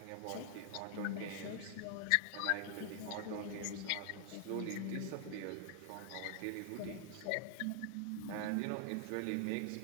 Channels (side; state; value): both; different; correlation 0.00